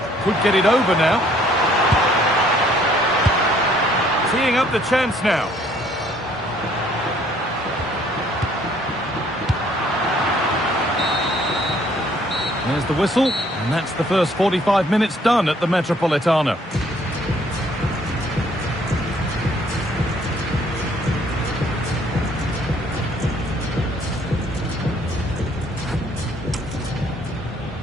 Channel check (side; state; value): both; normal; correlation 0.62